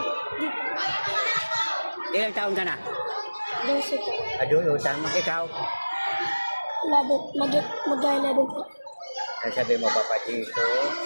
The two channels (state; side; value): inverted; both; correlation -1.00